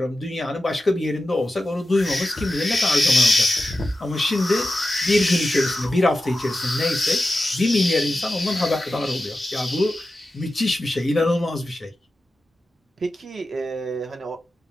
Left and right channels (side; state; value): both; normal; correlation 0.92